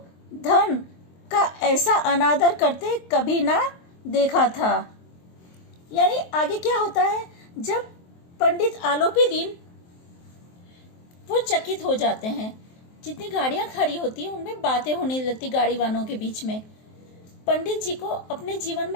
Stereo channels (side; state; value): right; late; 23 ms